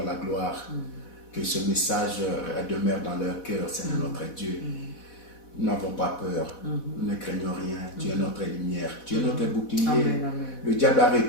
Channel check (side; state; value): right; late; 4.1 ms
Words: la gloire. Que ce message demeure dans leur cœur, Seigneur notre Dieu. Nous n'avons pas peur, nous ne craignons rien. Tu es notre lumière, tu es notre bouclier. Amen, amen. Le diable a